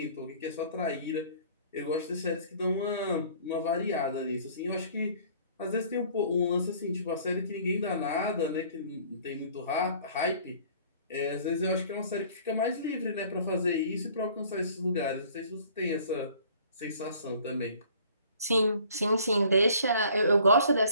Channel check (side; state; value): both; inverted; correlation -0.54